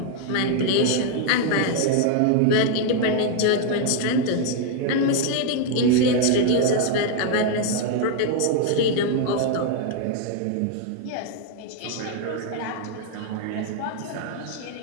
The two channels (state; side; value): different; both; correlation 0.00